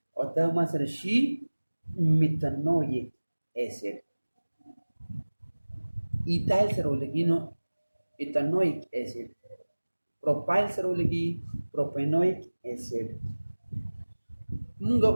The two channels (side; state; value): both; inverted; correlation -1.00